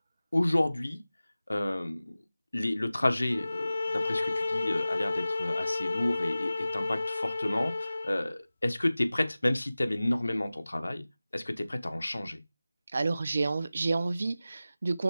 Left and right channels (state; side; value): inverted; both; correlation -0.97